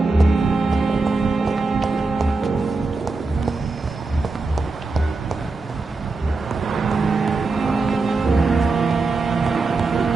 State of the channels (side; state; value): left; quieter; 3.7 dB